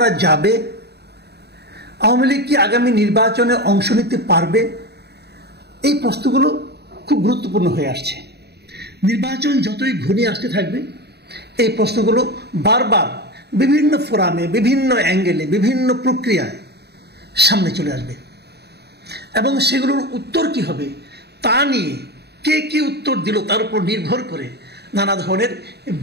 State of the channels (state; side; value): late; left; 0.48 ms